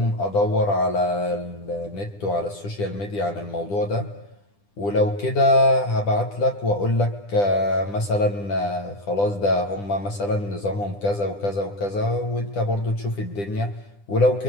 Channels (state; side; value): late; right; 10 ms